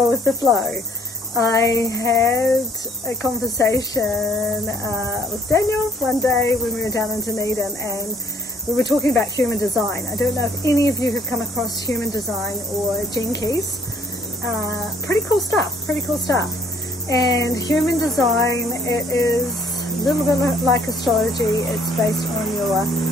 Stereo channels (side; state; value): both; normal; correlation 0.61